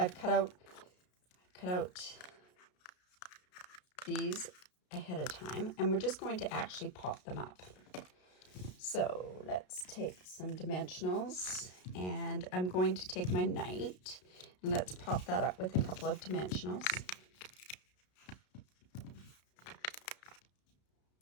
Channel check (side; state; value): right; late; 33 ms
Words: cut out these ahead of time, and we're just going to actually pop them up. So let's take some dimensionals, and I'm going to take my knight, and let's pop that up with a couple of dimensionals.